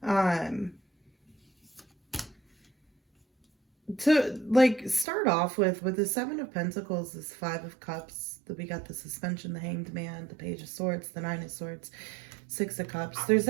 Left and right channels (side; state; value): left; drops out; at 5.1 s